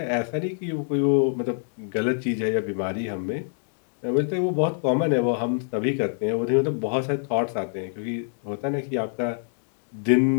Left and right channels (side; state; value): right; silent; digital silence